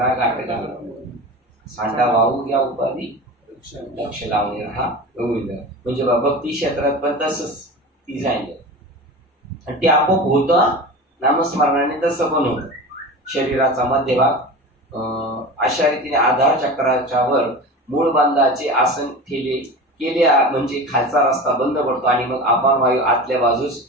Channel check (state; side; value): normal; both; correlation 0.31